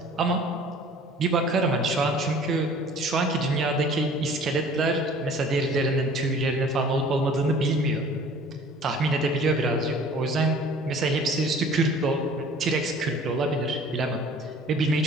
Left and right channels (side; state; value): both; normal; correlation 0.49